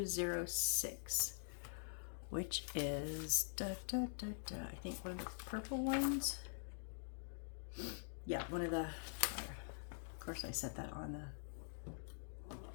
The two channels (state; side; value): silent; right; digital silence